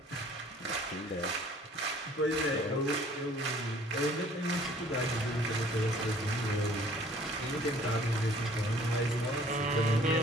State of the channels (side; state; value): both; normal; correlation 0.54